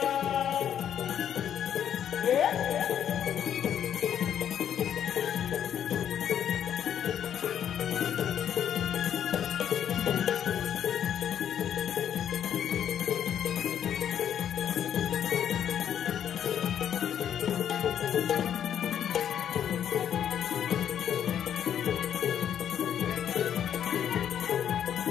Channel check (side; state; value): right; quieter; 9.5 dB